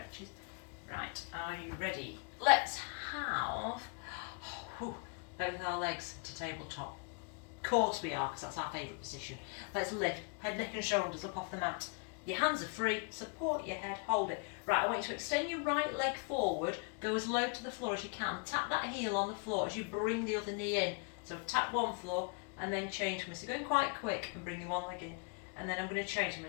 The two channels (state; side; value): quieter; right; 37.1 dB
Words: Right, are you ready? Let's have both our legs to tabletop. Of course we are, because that's our favourite position. Let's lift head, neck and shoulders up off the mat. Your hands are free, support your head, hold it. Right, I want you to extend your right leg forward, go as low to the floor as you can. Tap that heel on the floor as you bring the other knee in. So tap one floor and then change me. So going quite quick and bring your one leg in. And then I'm going to change, I'm